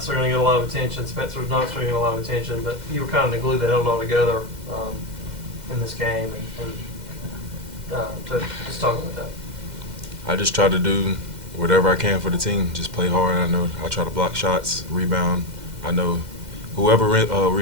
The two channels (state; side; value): late; left; 2.1 ms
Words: are going to get a lot of attention. Spencer's not going to get a lot of attention, but you were kind of the glue that held it all together in this game. And to just talk about that. I just try to do whatever I can for the team. Just play hard. I know I try to block shots, rebound. I know whoever